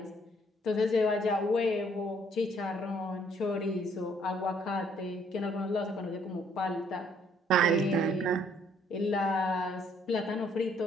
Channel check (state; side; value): normal; both; correlation 0.64